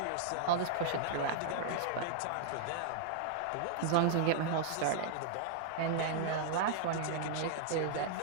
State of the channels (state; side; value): different; both; correlation -0.01